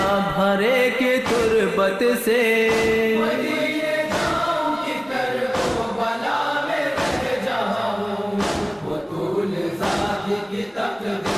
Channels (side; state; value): both; identical; correlation 1.00